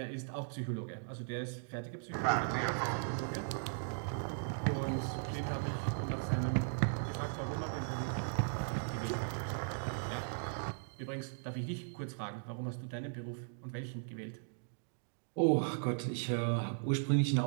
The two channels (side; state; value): left; silent; digital silence